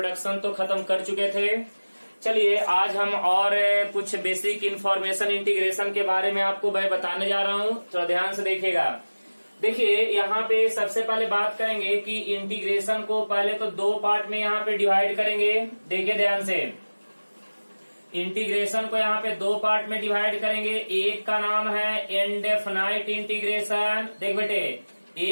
तो खत्म कर चुके थे। चलिए आज हम और कुछ बेसिक इंफॉर्मेशन इंटीग्रेशन के बारे में आपको मैं बताने जा रहा हूँ, तो ध्यान से देखिएगा। देखिए यहाँ पे सबसे पहले बात करेंगे कि इंटीग्रेशन को पहले तो दो पार्ट में यहाँ पे डिवाइड करेंगे। देखिए ध्यान से, इंटीग्रेशन को यहाँ पे दो पार्ट में डिवाइड करेंगे। एक का नाम है इनडेफिनाइट इंटीग्रेशन। देख बेटे,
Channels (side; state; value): both; inverted; correlation -1.00